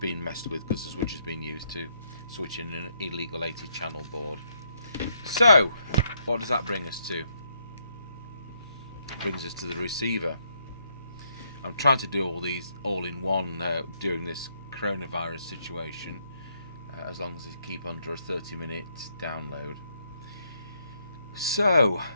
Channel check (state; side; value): inverted; both; correlation -0.74